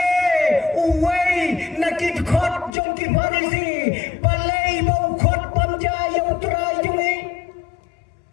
uway nakit khot jong ki Farisi balay bau khot pamja yang utrai jungi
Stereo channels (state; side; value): drops out; right; at 2.7 s